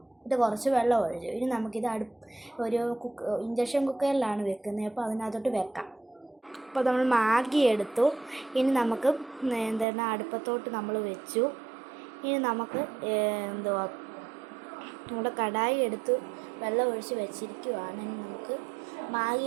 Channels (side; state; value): left; drops out; at 9.9 s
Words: ഇത് കുറച്ച് വെള്ളം ഒഴിച്ചു. ഇനി നമുക്കിത് ഒരു ഇൻഡക്ഷൻ കുക്കറിലാണ് വെക്കുന്നത്. അപ്പോൾ അതിനകത്തോട്ട് വെക്കാം. അപ്പോൾ നമ്മൾ മാഗി എടുത്തു. ഇനി നമുക്ക് അടുപ്പത്തോട്ട് നമ്മൾ വെച്ചു. ഇനി നമുക്ക് നമ്മുടെ കടായി എടുത്ത് വെള്ളം ഒഴിച്ച് വെച്ചിരിക്കുകയാണ്. ഇനി നമുക്ക്